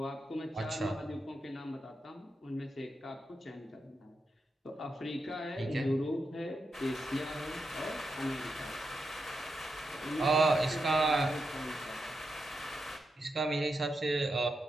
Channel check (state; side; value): normal; both; correlation 0.86